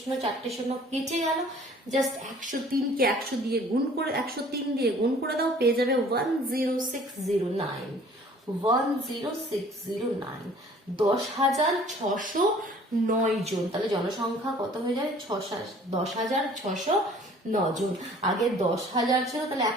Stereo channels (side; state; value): both; normal; correlation 0.52